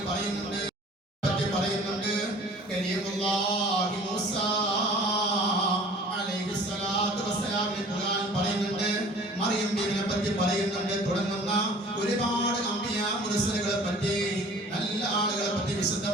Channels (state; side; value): normal; both; correlation 0.48